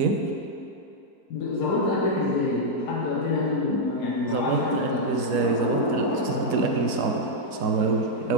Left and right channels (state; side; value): late; right; 4.0 ms